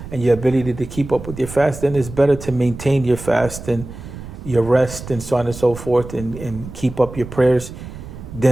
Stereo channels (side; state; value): right; noise; rumble, 12 dB below the sound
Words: and your ability to keep up with your fast, then it's better to maintain your fast and your rest and so on and so forth, and keep up your prayers